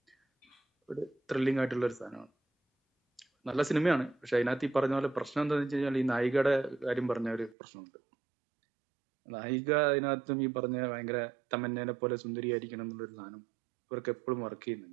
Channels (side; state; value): left; drops out; at 7.6 s